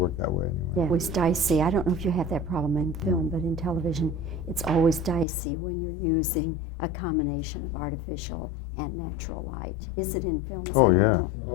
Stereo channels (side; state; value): right; drops out; at 5.2 s